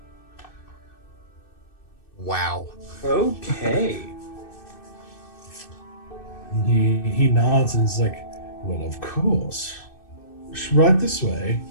Wow. Okay. He nods and is like, "Well, of course. Right this way."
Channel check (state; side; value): late; right; 2.6 ms